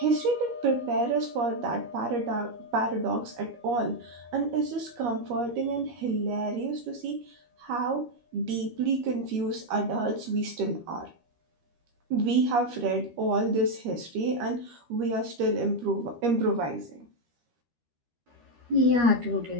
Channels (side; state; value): left; late; 13 ms